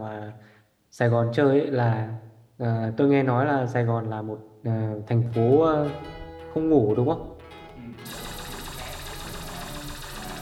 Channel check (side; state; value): both; identical; correlation 1.00